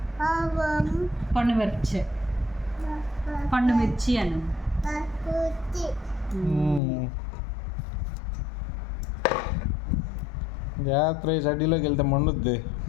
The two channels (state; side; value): drops out; right; at 6.8 s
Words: పండు మిర్చి అను. జాగ్రత్త, చడ్డీలోకి వెళ్తే మండుద్ది.